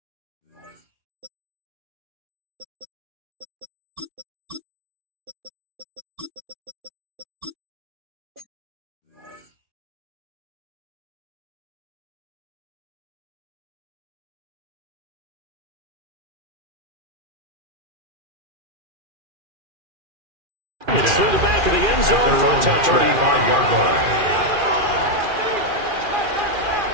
It's through the back of the end zone for a touchback. 35-yard line.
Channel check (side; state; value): left; late; 2.4 ms